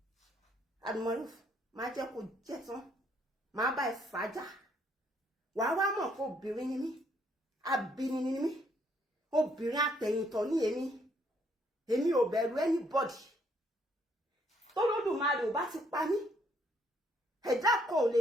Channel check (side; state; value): both; normal; correlation 0.69